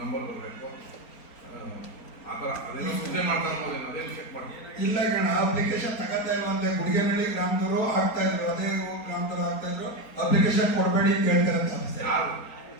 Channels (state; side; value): late; right; 4.3 ms